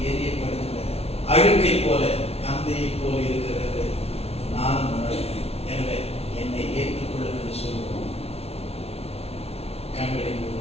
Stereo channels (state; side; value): late; right; 0.30 ms